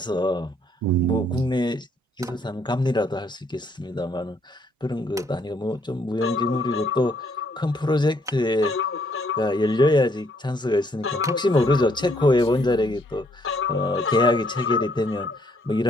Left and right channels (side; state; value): both; normal; correlation 0.68